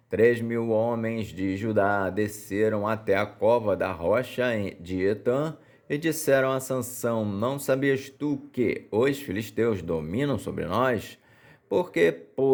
3.000 homens de Judá desceram até a cova da rocha de Etã e disseram a Sansão: não sabias tu que os filisteus dominam sobre nós? Por que,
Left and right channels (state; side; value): identical; both; correlation 1.00